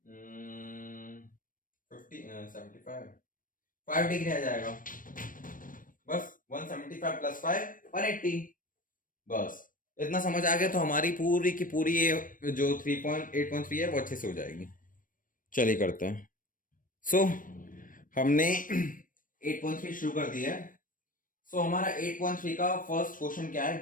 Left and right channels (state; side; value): late; right; 0.40 ms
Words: 5 डिग्री आ जाएगा। बस 175 प्लस 5 180। बस इतना समझ आ गया तो हमारी पूरी की पूरी ये जो 3.8.3 है वो अच्छे से हो जाएगी। चलिए करते हैं। सो हमने 8.3 शुरू कर दिया है। सो हमारा 8.3 का फर्स्ट क्वेश्चन क्या है,